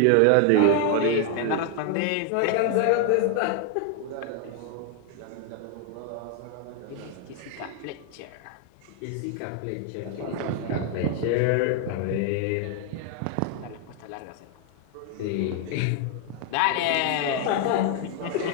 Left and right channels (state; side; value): different; both; correlation 0.01